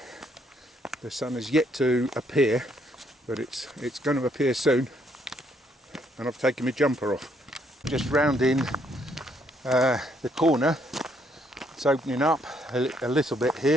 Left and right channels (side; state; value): both; normal; correlation 0.70